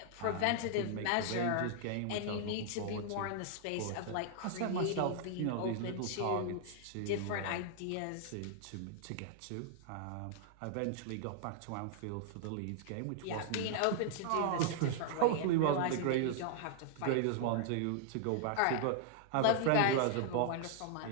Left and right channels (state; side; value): different; both; correlation -0.01